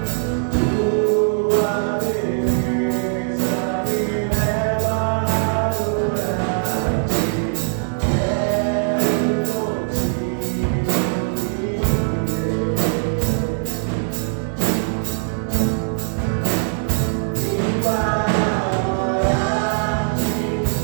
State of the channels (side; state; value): left; silent; digital silence